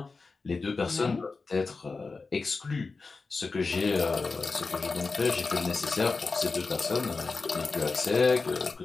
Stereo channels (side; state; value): right; quieter; 4.1 dB